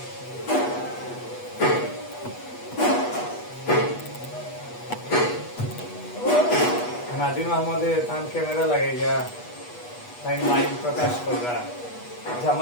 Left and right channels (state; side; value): late; right; 8.3 ms